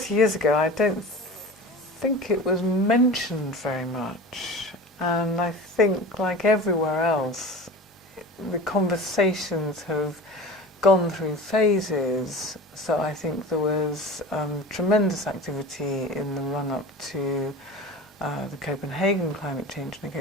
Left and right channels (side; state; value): both; normal; correlation 0.34